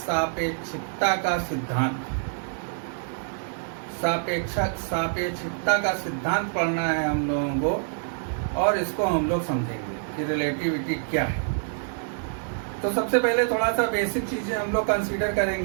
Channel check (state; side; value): silent; left; 61 dB below the other